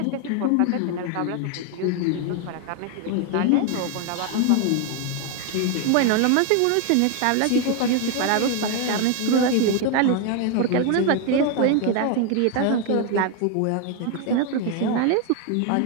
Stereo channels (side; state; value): both; different; correlation 0.01